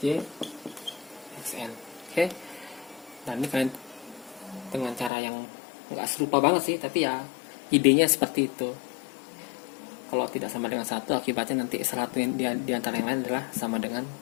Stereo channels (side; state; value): right; drops out; at 5.1 s